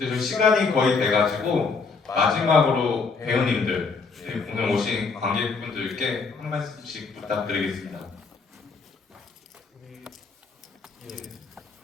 좀 시간이 거의 돼가지고 마지막으로 배우님들 오늘 오신 관객분들께 한 말씀씩 부탁드리겠습니다.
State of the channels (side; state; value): right; quieter; 4.7 dB